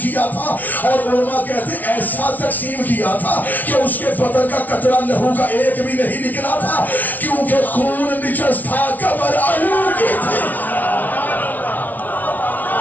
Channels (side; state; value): right; late; 0.079 ms